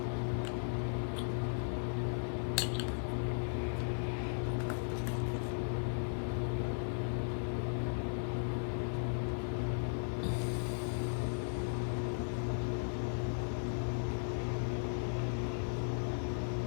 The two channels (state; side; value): silent; right; digital silence